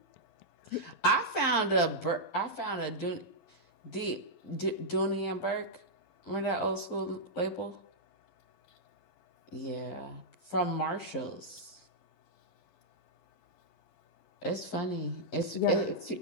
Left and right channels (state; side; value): late; right; 11 ms